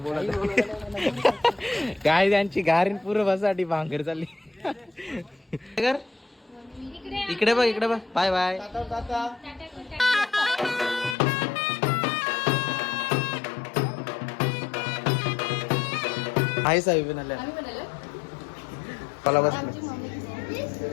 काय त्यांची गारीन पूर्ण बसासाठी भांगर चालली. इकडे बघ, इकडे बघ. Bye bye. हाय साहेब बनाल्या मला बस.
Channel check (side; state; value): right; drops out; at 11.2 s